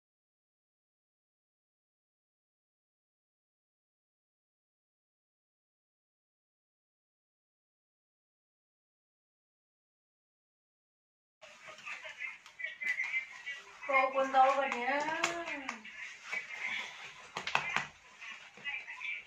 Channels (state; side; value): identical; both; correlation 1.00